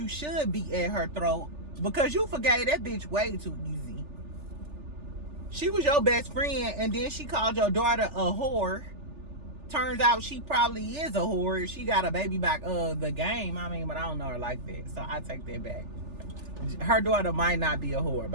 should be at her throat because you forgave that bitch way too easy. She was your best friend, and then she called your daughter a whore. turns out she probably is a whore. She got a baby back the game. I mean, but I don't know her like that, so I take that back. Her daughter might not be a whore,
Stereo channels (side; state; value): left; late; 3.4 ms